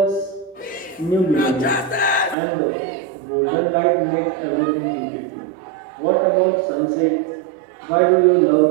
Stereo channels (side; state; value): left; drops out; at 2.4 s